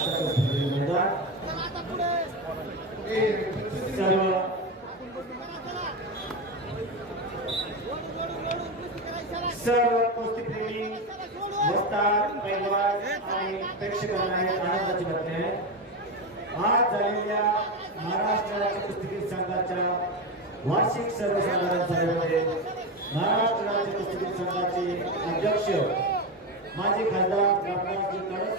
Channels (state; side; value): normal; both; correlation 0.16